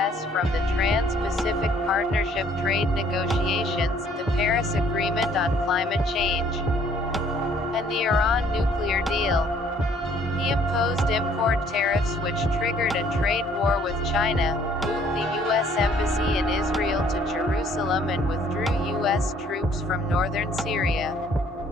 from the Trans-Pacific Partnership trade negotiations, the Paris Agreement on Climate Change, and the Iran nuclear deal. He imposed import tariffs which triggered a trade war with China, moved the U.S. Embassy in Israel to Jerusalem and withdrew U.S. troops from northern Syria.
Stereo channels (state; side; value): normal; both; correlation 0.60